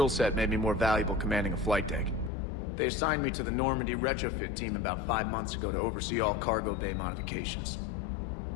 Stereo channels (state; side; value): drops out; right; at 2.3 s